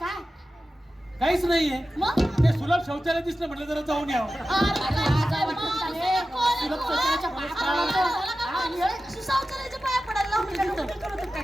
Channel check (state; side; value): normal; both; correlation 0.94